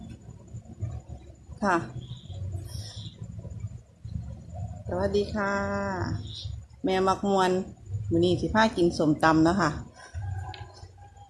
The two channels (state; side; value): identical; both; correlation 1.00